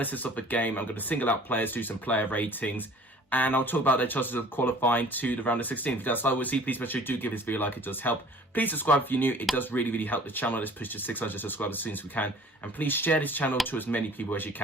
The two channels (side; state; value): both; normal; correlation 0.49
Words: of the game. I'm going to single out players, do some player ratings, and I'll talk about their chances of qualifying to the round of 16. If that's what we'll see, please make sure you do give this video a like, it does help. Please subscribe if you're new, it does really help the channel. Let's push to 600 subscribers as soon as we can. And please share this channel to as many people as you